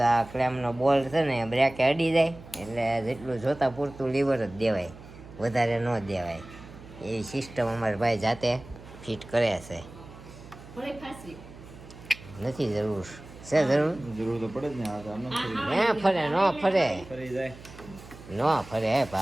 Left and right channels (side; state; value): right; noise; hum, 17 dB below the sound